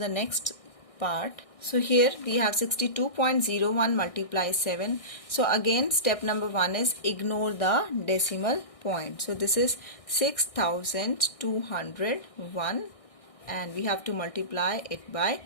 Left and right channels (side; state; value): right; late; 1.6 ms